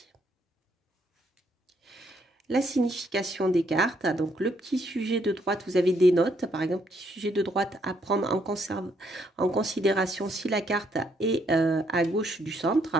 la signification des cartes. Donc, le petit sujet de droite, vous avez des notes. Par exemple, petit sujet de droite à prendre en considération si la carte est à gauche du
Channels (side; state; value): both; normal; correlation 0.72